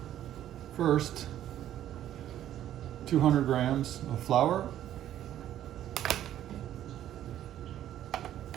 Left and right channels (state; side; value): quieter; left; 11.8 dB